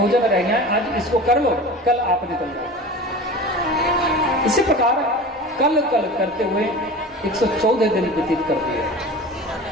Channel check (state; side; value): normal; both; correlation 0.35